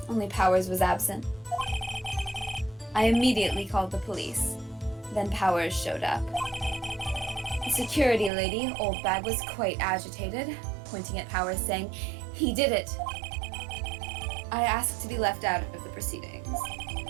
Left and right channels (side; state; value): left; drops out; at 8.3 s